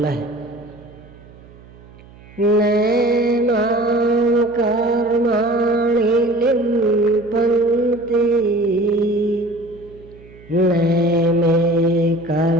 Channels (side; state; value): right; noise; hum, 23 dB below the sound